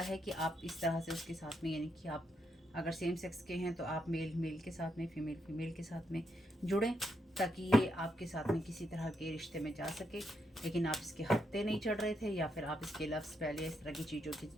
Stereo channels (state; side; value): normal; both; correlation 0.80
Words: है कि आप इस तरह से उसके साथ में, यानी कि आप अगर सेम सेक्स के हैं तो आप मेल के साथ में, फीमेल के साथ में जुड़ें ताकि ये आपके साथ में किसी तरह के रिश्ते में जा सके, लेकिन आप इसके हत्थे नहीं चढ़ रहे थे, या फिर आप इसके लव स्पेल या इस तरह की चीज़ों